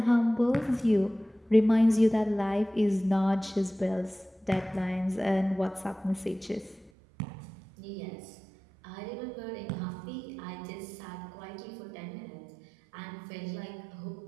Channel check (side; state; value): left; drops out; at 6.9 s